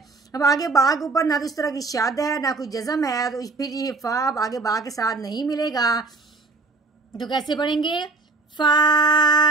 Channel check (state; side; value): quieter; left; 3.6 dB